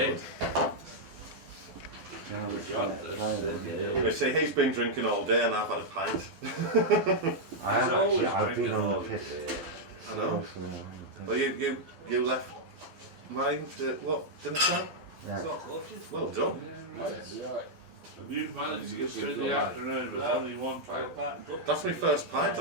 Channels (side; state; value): left; late; 12 ms